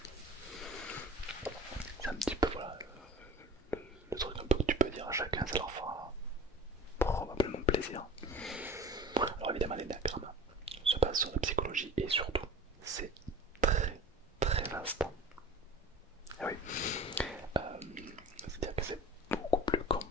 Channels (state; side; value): normal; both; correlation 0.41